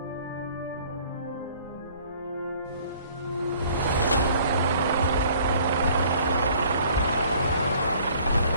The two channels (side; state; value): both; inverted; correlation -0.55